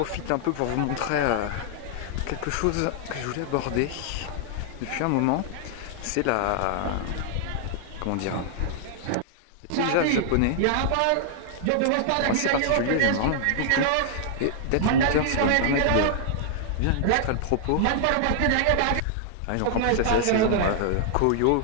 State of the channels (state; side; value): different; both; correlation -0.01